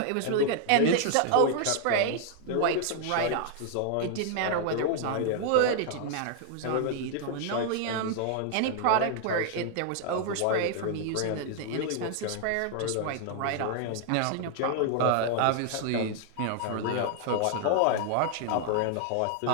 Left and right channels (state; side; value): different; both; correlation 0.00